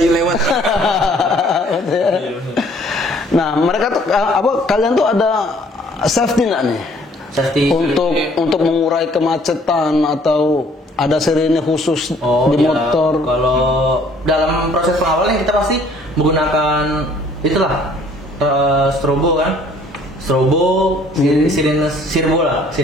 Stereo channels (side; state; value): both; normal; correlation 0.58